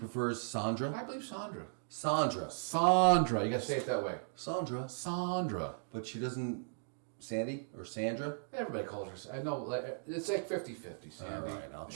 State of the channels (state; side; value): silent; left; digital silence